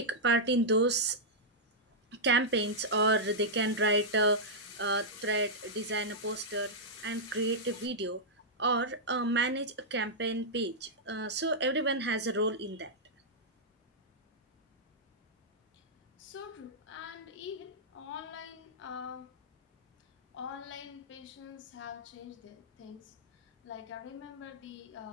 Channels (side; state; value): both; normal; correlation -0.09